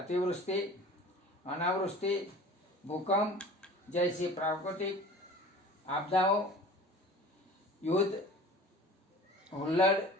अनावृष्टि, भूकंप जैसी प्राकृतिक आपदाओं, युद्ध, हुल्लड़,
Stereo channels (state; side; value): normal; both; correlation 0.42